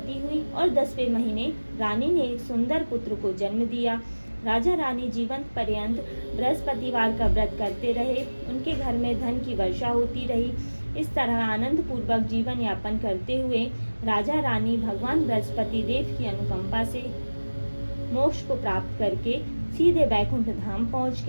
हुई और 10वें महीने रानी ने एक सुंदर पुत्र को जन्म दिया। राजा रानी जीवन पर्यंत बृहस्पतिवार का व्रत करते रहे। उनके घर में धन की वर्षा होती रही। इस तरह आनंद पूर्वक जीवन यापन करते हुए राजा रानी भगवान बृहस्पति देव की अनुकंपा से मोक्ष को प्राप्त करके सीधे बैकुंठ धाम पहुंच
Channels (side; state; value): both; inverted; correlation -1.00